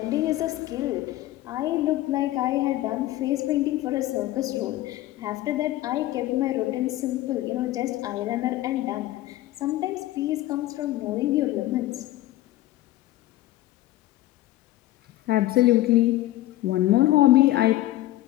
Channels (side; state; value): right; quieter; 15.7 dB